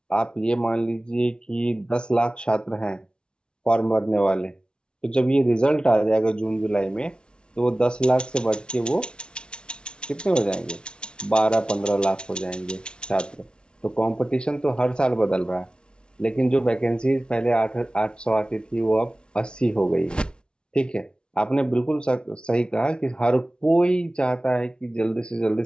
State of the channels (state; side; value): late; right; 0.056 ms